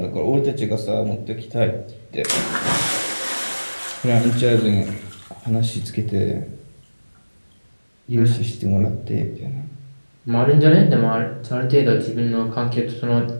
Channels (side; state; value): both; inverted; correlation -1.00